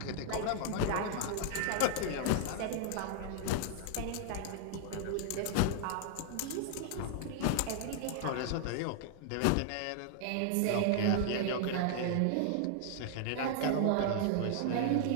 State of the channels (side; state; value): both; different; correlation 0.00